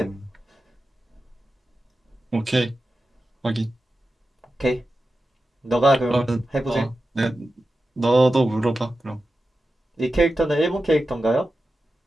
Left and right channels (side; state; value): both; normal; correlation 0.92